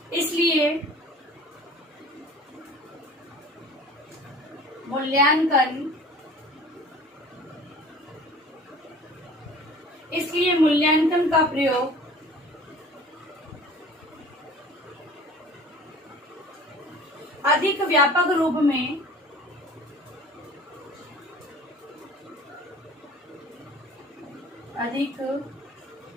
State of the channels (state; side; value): normal; both; correlation 0.45